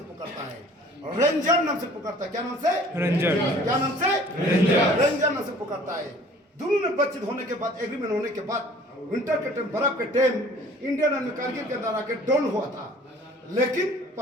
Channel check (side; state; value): both; normal; correlation 0.51